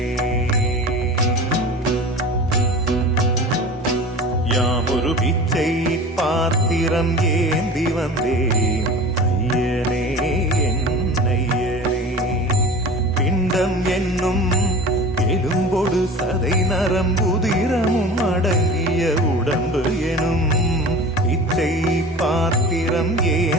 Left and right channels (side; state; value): both; normal; correlation 0.37